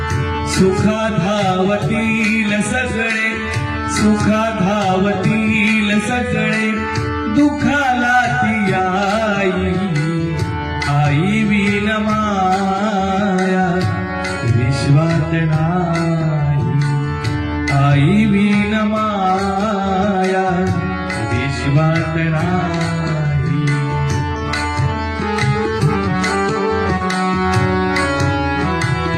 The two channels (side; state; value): both; identical; correlation 1.00